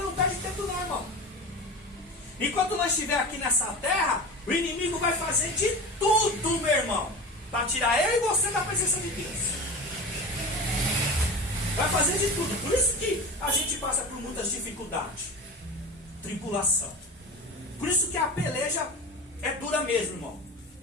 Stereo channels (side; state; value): both; normal; correlation 0.31